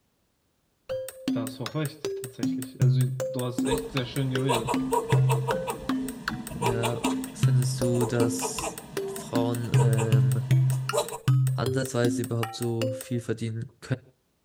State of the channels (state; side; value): identical; both; correlation 1.00